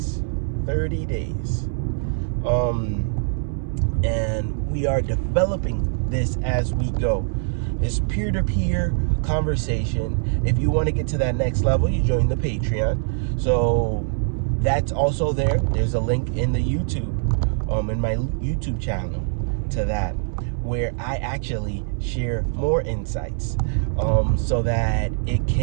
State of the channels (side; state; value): left; silent; 63 dB below the other